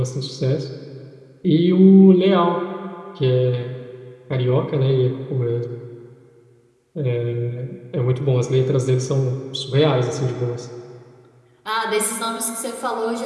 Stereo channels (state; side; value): identical; both; correlation 1.00